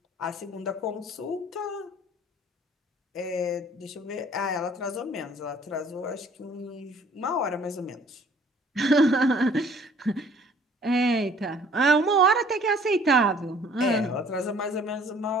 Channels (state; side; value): normal; both; correlation 0.55